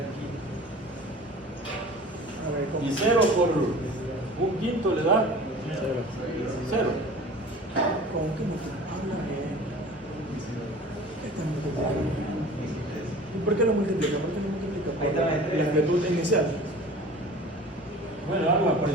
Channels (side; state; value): both; normal; correlation 0.42